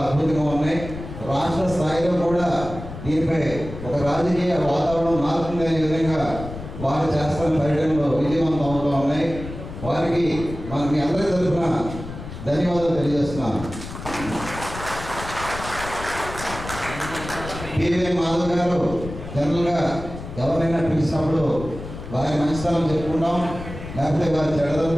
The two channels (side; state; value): left; noise; rumble, 11 dB below the sound